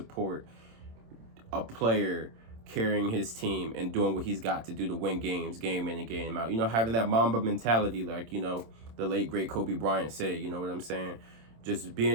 a player carrying his team and doing what he's got to do to win games, game in and game out. You know, having that Mamba mentality, like, you know, the late, great Kobe Bryant said, you know what I'm saying? Just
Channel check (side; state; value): left; late; 27 ms